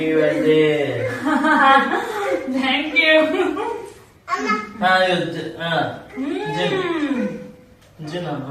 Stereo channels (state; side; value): identical; both; correlation 1.00